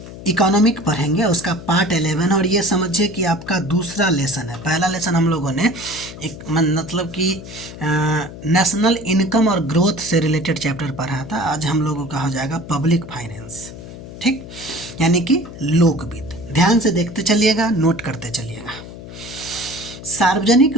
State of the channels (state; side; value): noise; left; hum, 14 dB below the sound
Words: इकोनॉमिक पढ़ेंगे, उसका पार्ट 11 और ये समझिए कि आपका दूसरा लेसन है। पहला लेसन हम लोगों ने एक मतलब कि नेशनल इनकम और ग्रोथ से रिलेटेड चैप्टर पढ़ा था। आज हम लोगों का हो जाएगा पब्लिक फाइनेंस, ठीक, यानी कि लोक वित्त। ध्यान से देखते चलिएगा, नोट करते चलिएगा। सार्वजनिक